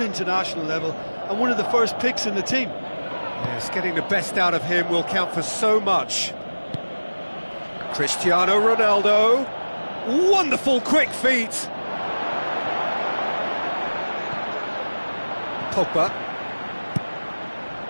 international level, and one of the first picks in the team. Yes, getting the best out of him will count for so much. Cristiano Ronaldo. Wonderful quick feet. Pogba.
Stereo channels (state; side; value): inverted; both; correlation -1.00